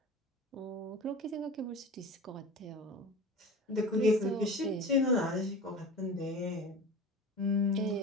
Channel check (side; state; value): both; normal; correlation 0.34